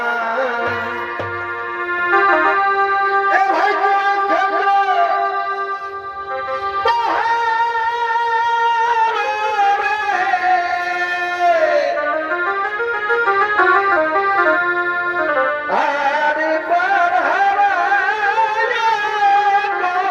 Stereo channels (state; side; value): identical; both; correlation 1.00